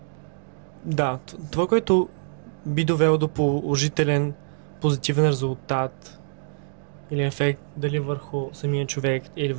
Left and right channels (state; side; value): silent; left; digital silence